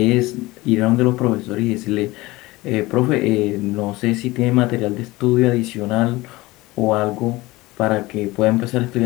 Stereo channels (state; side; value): quieter; right; 20.3 dB